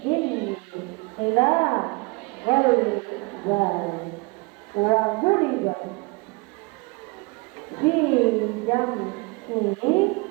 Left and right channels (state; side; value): quieter; left; 27.7 dB